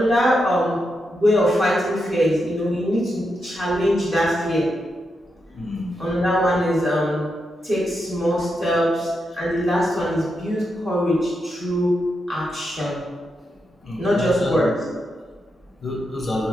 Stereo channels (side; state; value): both; normal; correlation 0.85